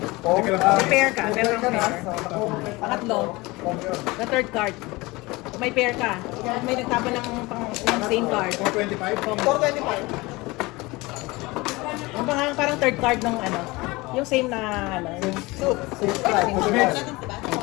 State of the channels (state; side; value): quieter; right; 22.6 dB